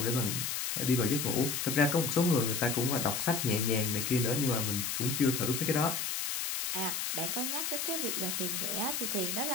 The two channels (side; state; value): left; noise; hiss, 1 dB below the sound